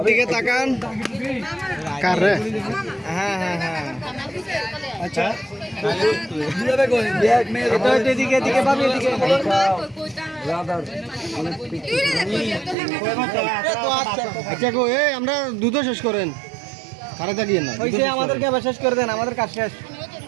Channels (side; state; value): left; drops out; at 12.8 s